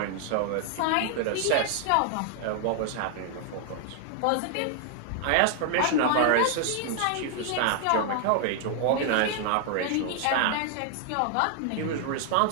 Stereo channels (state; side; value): different; both; correlation 0.00